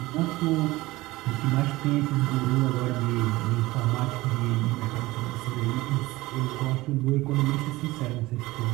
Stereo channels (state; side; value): quieter; left; 19.4 dB